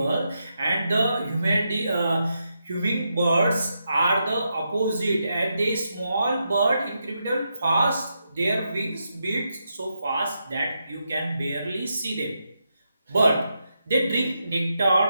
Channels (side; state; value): both; inverted; correlation -0.84